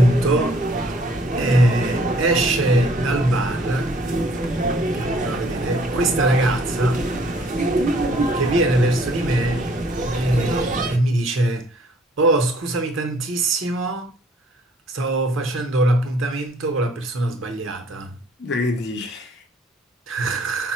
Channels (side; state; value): both; normal; correlation 0.60